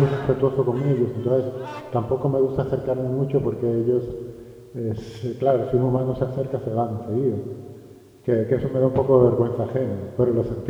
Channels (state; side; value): identical; both; correlation 1.00